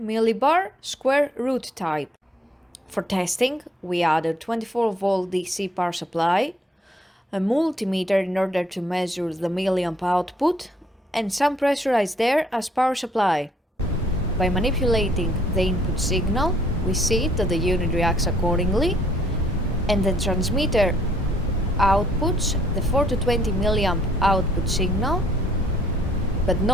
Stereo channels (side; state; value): both; normal; correlation 0.64